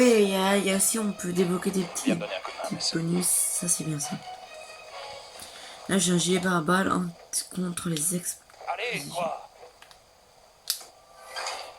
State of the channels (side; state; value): both; identical; correlation 1.00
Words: il y a aussi, on peut débloquer des Viens me donner un coup de main, petits Mason. bonus. Ça, c'est bien ça. Là, j'ai un gilet pare-balles contre les ex. Allez, quoi?